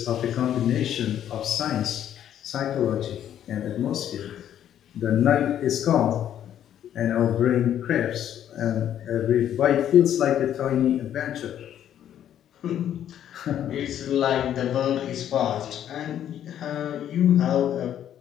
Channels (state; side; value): quieter; right; 10.5 dB